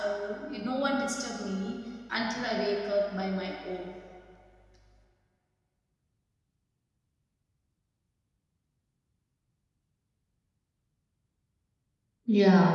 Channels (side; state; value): both; identical; correlation 1.00